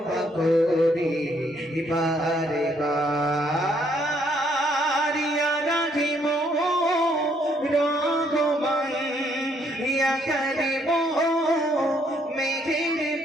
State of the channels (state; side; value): normal; both; correlation 0.69